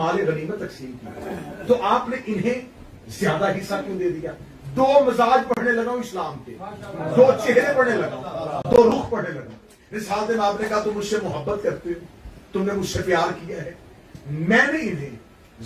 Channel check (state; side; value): identical; both; correlation 1.00